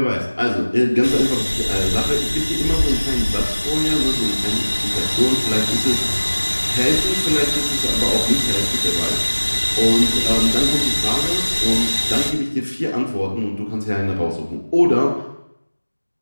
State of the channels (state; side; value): inverted; both; correlation -1.00